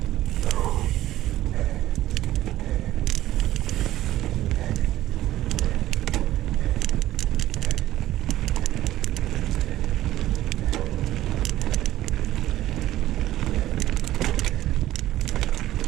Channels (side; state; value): left; quieter; 14.4 dB